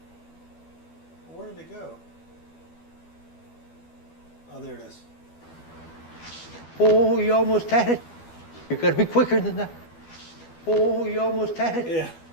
Where did it go? Oh, there it is. Oh, you almost had it. You gotta be quicker than that. Oh, you almost had it. Yeah,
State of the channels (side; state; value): right; late; 12 ms